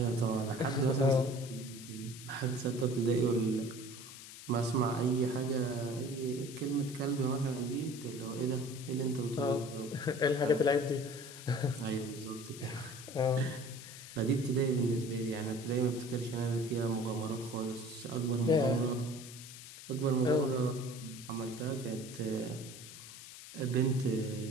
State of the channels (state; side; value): noise; left; hiss, 14 dB below the sound